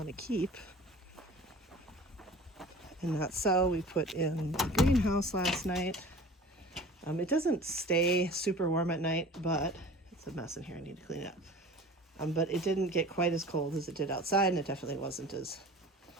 to keep and not sell. We put in the greenhouse last night. It doesn't stay super warm at night, but it's a mess in here. I need to clean it up. But it didn't get quite as cold as it did outside, and it definitely wasn't as,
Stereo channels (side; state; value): both; normal; correlation 0.42